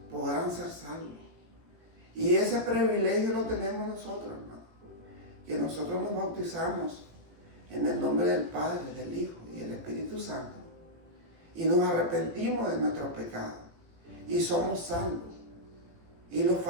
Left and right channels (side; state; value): left; late; 18 ms